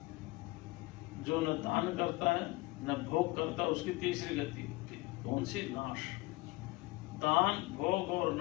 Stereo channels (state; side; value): quieter; right; 21.6 dB